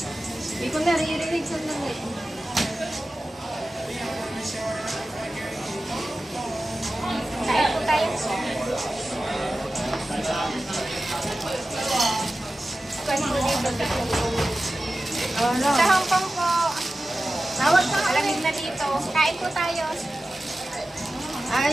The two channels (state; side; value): normal; both; correlation 0.94